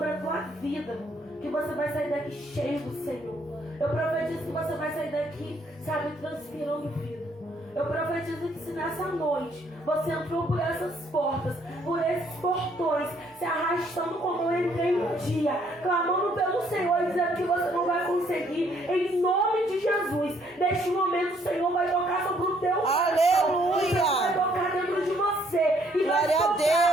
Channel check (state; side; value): normal; both; correlation 0.66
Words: a tua vida que você vai sair daqui cheio do Senhor. Eu profetizo que você vai sair daqui, sabe, transpirando vida. Eu profetizo que se nessa noite você entrou por essas portas, por esses portões, se arrastando como eu entrei um dia, clamando pelo Senhor, dizendo que você não vai conseguir, em nome de Jesus, neste momento o Senhor vai tocar sobre o teu coração. Aleluia. O Senhor vai tocar dentro de você e vai Glória a tocar